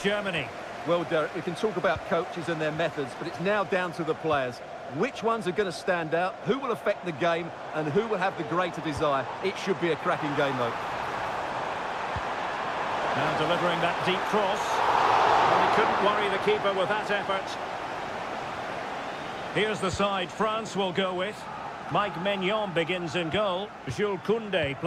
Germany. Well, Derek, we can talk about coaches and their methods, but it's now down to the players. Which ones are going to stand out, who will affect the game, and who will have the greater desire? It should be a cracking game, though. Now delivering that deep cross. Well, he couldn't worry the keeper with that effort. Here's the side France will go with. Mike Maignan begins in goal. Jules Koundé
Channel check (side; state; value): both; identical; correlation 1.00